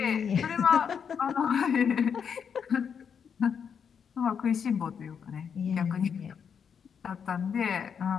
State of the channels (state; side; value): quieter; right; 7.1 dB